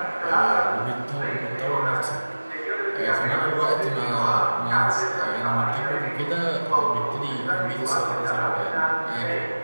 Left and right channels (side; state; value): both; inverted; correlation -1.00